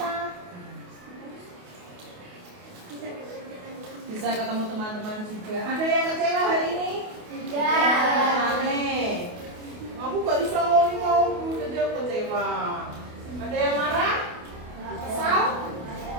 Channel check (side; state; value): left; late; 28 ms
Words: Bisa ketemu teman-teman juga. Ada yang kecewa hari ini? Tidak. Aneh. Aku gak bisa ngomong, jadi aku kecewa. Ada yang marah? Kesal?